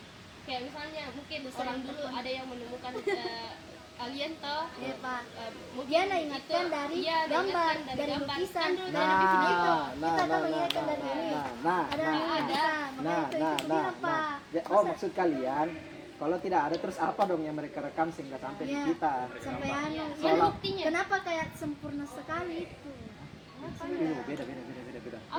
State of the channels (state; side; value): identical; both; correlation 1.00